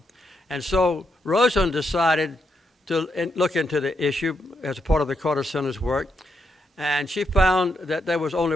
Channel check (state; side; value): normal; both; correlation 0.80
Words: And so Rosen decided to look into the issue as a part of the Carter Center's work, and she found that there was only